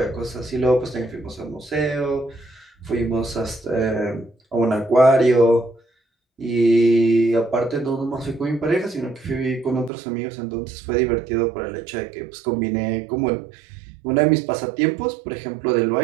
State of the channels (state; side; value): drops out; left; at 9.9 s